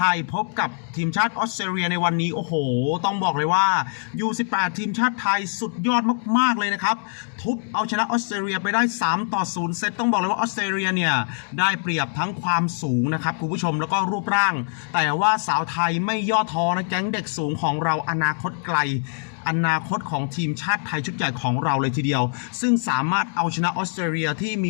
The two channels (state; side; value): silent; right; 58 dB below the other